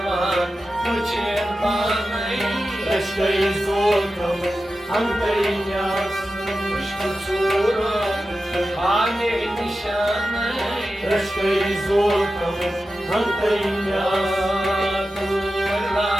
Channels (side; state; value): both; normal; correlation 0.92